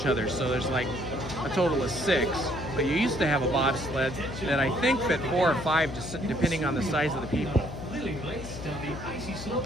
other, so there's like a total of 6. But you used to have a bobsled that I think fit 4 or 5, just depending on the size of the people. Thrilling race down the icy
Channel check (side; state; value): left; noise; hum, 10 dB below the sound